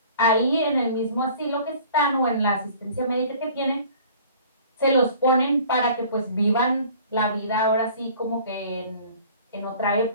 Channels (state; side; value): inverted; both; correlation -0.49